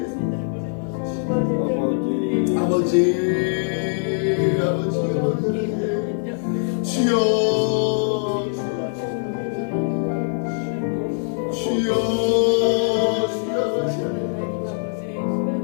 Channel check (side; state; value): right; silent; digital silence